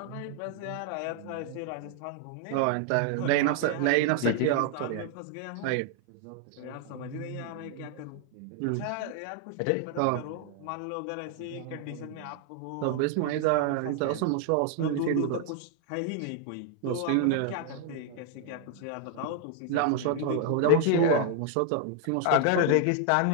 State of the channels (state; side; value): different; both; correlation 0.00